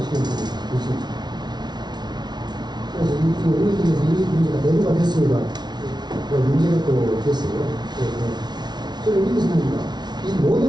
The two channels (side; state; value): left; late; 0.20 ms